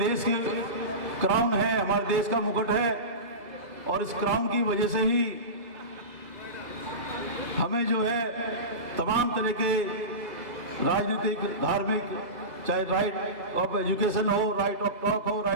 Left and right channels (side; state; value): left; late; 2.1 ms